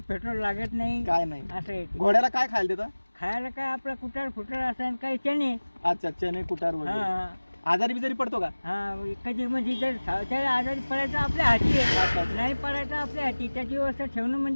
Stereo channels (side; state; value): both; inverted; correlation -1.00